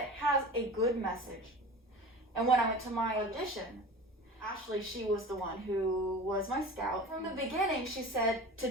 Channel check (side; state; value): both; normal; correlation 0.35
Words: has a good message. And when I went to my audition, Ashley, she was the one who was my scout. From the beginning, she said, to